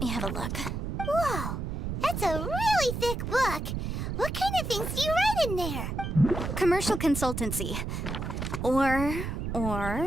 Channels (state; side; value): noise; right; rumble, 3 dB below the sound